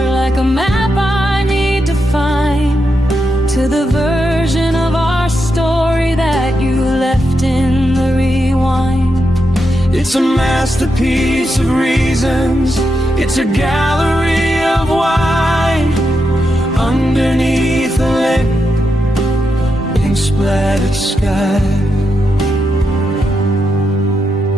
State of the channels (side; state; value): both; normal; correlation 0.85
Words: It's a masterpiece of reasons. It's a gallery of wine underneath a lit, pink splattered sky.